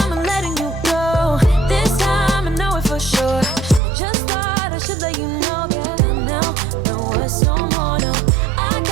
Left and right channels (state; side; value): drops out; left; at 3.8 s